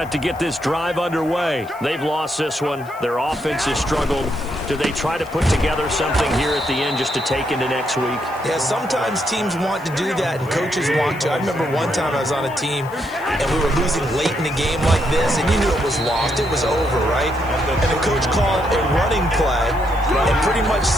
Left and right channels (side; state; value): left; noise; hiss, 24 dB below the sound